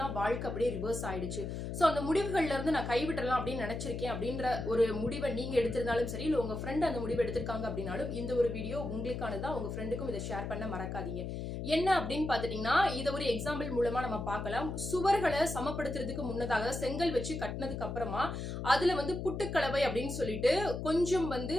தான் வாழ்க்கை அப்படியே ரிவர்ஸ் ஆயிடுச்சு. சோ அந்த முடிவுகள்ல இருந்து நான் கைவிடலாம் அப்படின்னு நினைச்சிருக்கேன் அப்படின்ற ஒரு முடிவை நீங்க எடுத்திருந்தாலும் சரி, இல்ல உங்க ஃப்ரெண்ட் அந்த முடிவை எடுத்திருக்காங்க அப்படின்னாலும் இந்த ஒரு வீடியோ உங்களுக்கானதா. உங்க ஃப்ரெண்டுக்கும் இதை ஷேர் பண்ண மறக்காதீங்க. என்ன அப்படின்னு பாத்துட்டீங்கன்னா, இதை ஒரு எக்ஸாம்பிள் மூலமா நம்ம பார்க்கலாம். சுவர்களை சமப்படுத்துறதுக்கு முன்னதாக செங்கல் வச்சு கட்டினதுக்கு அப்புறமா அதுல புட்டுக்கலவை அப்படின்னு சொல்லிட்டு கொஞ்சம்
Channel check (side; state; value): left; noise; hum, 5 dB below the sound